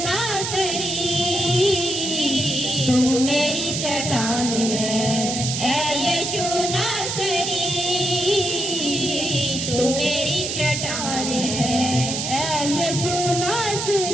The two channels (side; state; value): right; noise; hiss, 3 dB below the sound